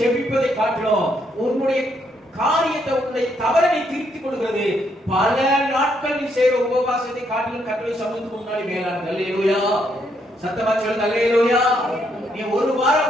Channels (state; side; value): normal; both; correlation 0.74